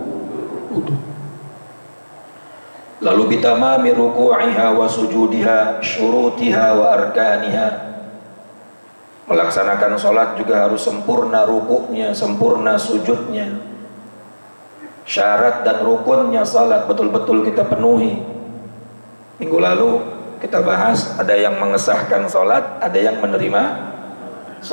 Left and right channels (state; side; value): inverted; both; correlation -1.00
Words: Lalu bitamami ruku'iha wa sujudiha, syurutiha wa arkaniha. Melaksanakan sholat juga harus sempurna rukuknya, sempurna sujudnya. Syarat dan rukunnya salat betul-betul kita penuhi. Minggu lalu kita bahas, ada yang mengesahkan sholat, ada yang menerima